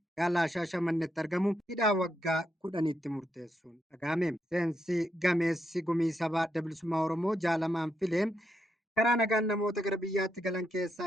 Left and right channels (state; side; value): normal; both; correlation 0.81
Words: magaalaa Shaashamannetti argamu hidhaa waggaa 10tti murteessuun dhagahame. Miseensi gameessi gumii sabaa adda bilisummaa Oromoo Jaal Amaan Filee karaa nagaan namoota gara biyyaatti galan